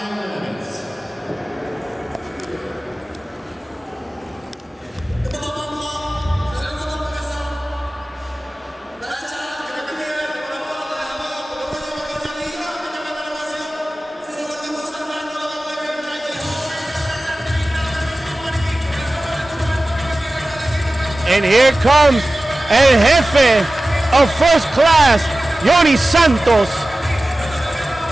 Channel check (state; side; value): normal; both; correlation 0.96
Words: limit. And here comes El Jefe of First Class, Jhonny Santos,